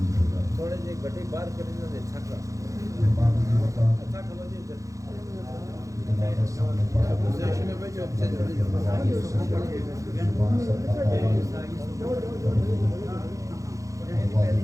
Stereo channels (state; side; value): late; left; 0.16 ms